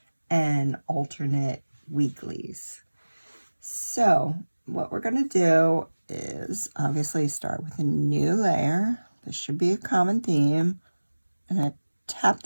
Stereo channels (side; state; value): both; inverted; correlation -1.00